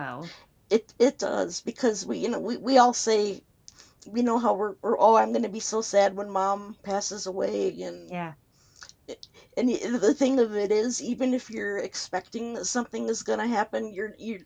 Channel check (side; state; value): both; identical; correlation 1.00